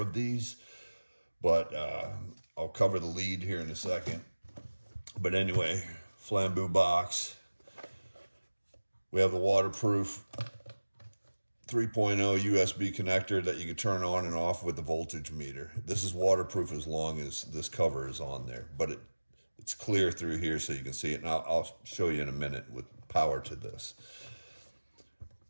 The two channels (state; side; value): inverted; both; correlation -1.00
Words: these, but I'll cover the lead here in a second. But anyway, flambeau box. We have the waterproof 3.0 USB connector that you can turn on and off with the voltage meter. This is waterproof as long as this cover is on there, but it's clear through here so you can see it. And I'll show you in a minute with power to this.